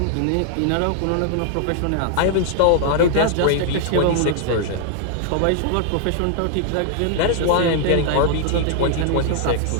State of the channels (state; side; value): different; both; correlation 0.00